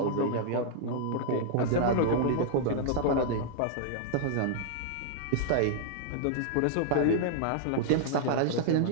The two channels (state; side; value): different; both; correlation -0.01